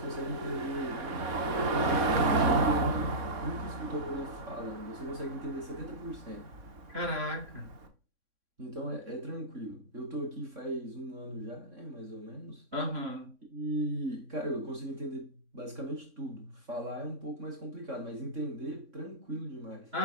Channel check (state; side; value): late; left; 3.6 ms